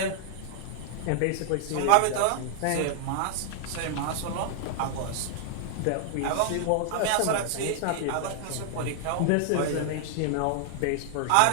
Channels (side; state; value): both; different; correlation -0.01